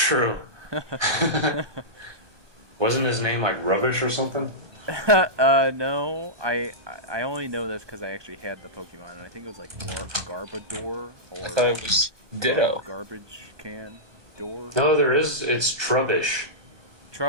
Wasn't his name like Rubbish or something? No. I only know this because I actually had the Pokemon, and I think it was like Garbodor or I thought it was Ditto. garbage can door. No, there is. It's Trubbish.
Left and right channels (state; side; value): late; left; 1.2 ms